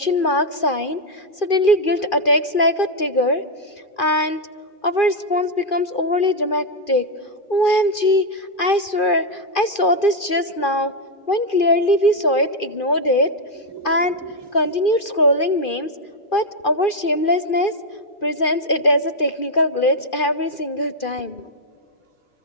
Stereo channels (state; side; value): late; right; 2.4 ms